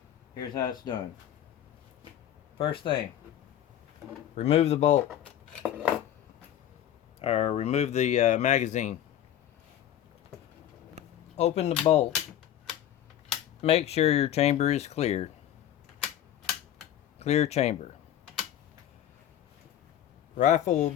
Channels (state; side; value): quieter; right; 11.2 dB